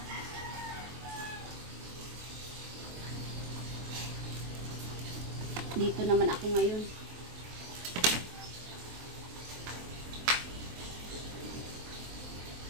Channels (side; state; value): left; late; 23 ms